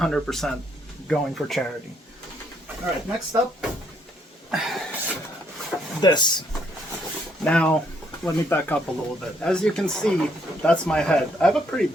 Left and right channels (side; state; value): both; normal; correlation 0.70